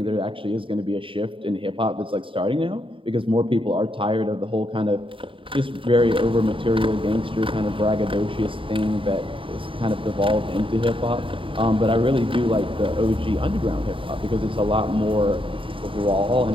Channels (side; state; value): left; late; 0.25 ms